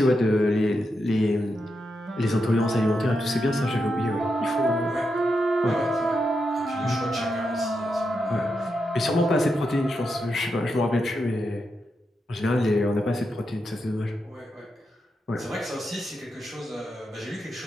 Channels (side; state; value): both; normal; correlation 0.85